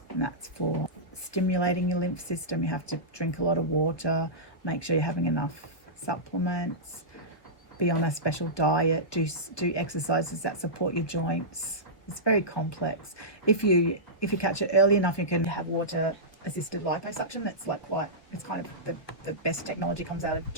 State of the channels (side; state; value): right; late; 1.6 ms